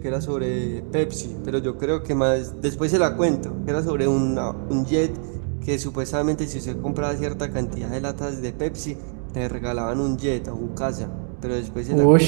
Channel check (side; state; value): left; silent; 58 dB below the other